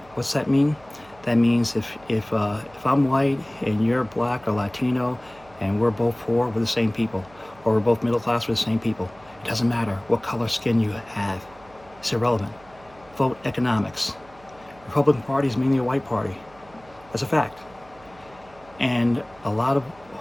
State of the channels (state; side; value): noise; right; hum, 26 dB below the sound